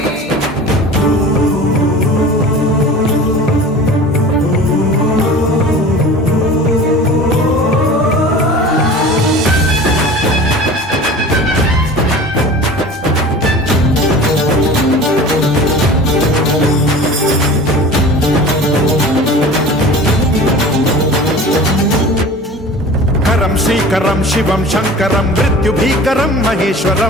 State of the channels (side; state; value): both; normal; correlation 0.39